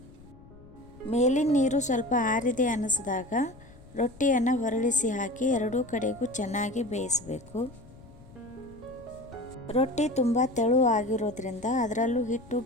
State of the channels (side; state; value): left; noise; rumble, 21 dB below the sound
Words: ಮೇಲಿನ ನೀರು ಸ್ವಲ್ಪ ಆರಿದೆ ಅನ್ನಿಸಿದಾಗ ರೊಟ್ಟಿಯನ್ನು ಹೊರಳಿಸಿ ಹಾಕಿ ಎರಡೂ ಕಡೆಗೂ ಚೆನ್ನಾಗಿ ಬೇಯಿಸಬೇಕು. ರೊಟ್ಟಿ ತುಂಬ ತೆಳು ಆಗಿರೋದ್ರಿಂದ ಅದರಲ್ಲೂ ಹಿಟ್ಟು